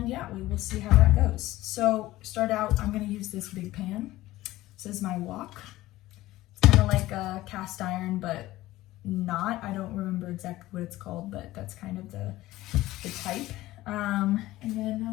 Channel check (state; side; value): quieter; right; 16.8 dB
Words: yeah, we will see how that goes. So start out, I'm gonna use this big pan. This is my wok. It's kind of like a cast iron, but not. I don't remember exactly what it's called, but that's kind of the type. And then